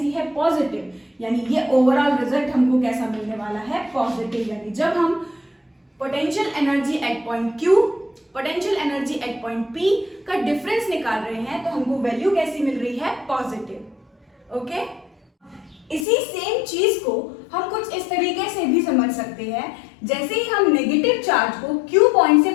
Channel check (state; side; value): drops out; right; at 16.1 s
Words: है, पॉजिटिव, यानी ये ओवरऑल रिजल्ट हमको कैसा मिलने वाला है, पॉजिटिव। यानी जब हम potential energy at point Q, potential energy at point P का डिफरेंस निकाल रहे हैं तो हमको वैल्यू कैसी मिल रही है, पॉजिटिव। ओके, इसी सेम चीज को हम कुछ इस तरीके से भी समझ सकते हैं, जैसे ही हम नेगेटिव चार्ज को Q पॉइंट से